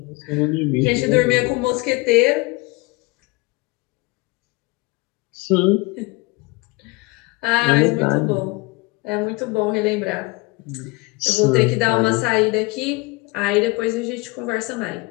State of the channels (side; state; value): right; quieter; 24.7 dB